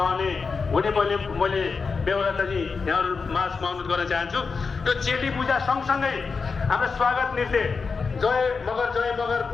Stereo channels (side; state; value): right; quieter; 4.9 dB